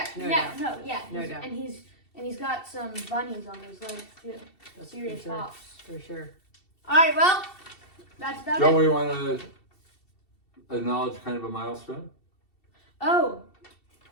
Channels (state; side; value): late; right; 2.7 ms